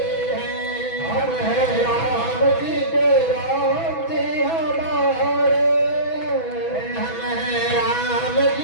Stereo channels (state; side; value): late; right; 6.1 ms